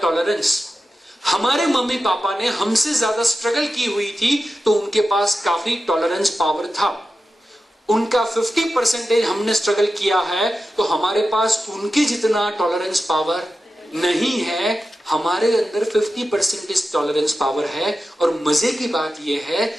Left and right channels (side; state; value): both; normal; correlation 0.92